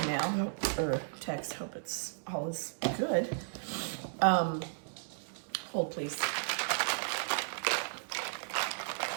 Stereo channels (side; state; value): left; silent; digital silence